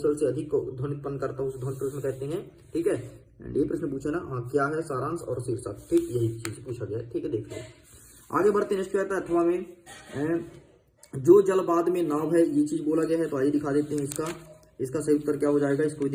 से अधिक ध्वनि उत्पन्न करता है उसे ध्वनि प्रदूषण कहते हैं। ठीक है, ये प्रश्न पूछा ना, हाँ क्या है सारांश और शीर्षक, ठीक यही चीज पूछा गया है। ठीक है, देख लो आगे बढ़ते। नेक्स्ट क्या आता है, अथवा में जो जल बाद में नाव है, ये चीज बोला गया है। तो आइए दिखा देते हैं इसका सही उत्तर क्या हो जाएगा, इसको भी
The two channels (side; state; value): both; identical; correlation 1.00